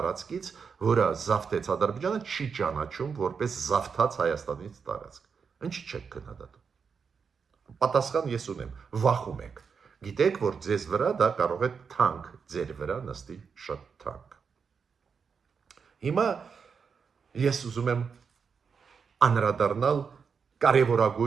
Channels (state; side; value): quieter; left; 6.0 dB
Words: որը զավթեց Ադրբեջանը, չի ճանաչում որպես զավթած Հայաստանից տարածք։ Ինչի՞ չեք քննադատում։ Պատասխան ես ունեմ, վախում եք։ Գիտեք, որ ձեզ վրա դա կարող է թանկ, ձեր վրա նստի շատ թանկ։ Հիմա ես ուզում եմ անդրադառնալ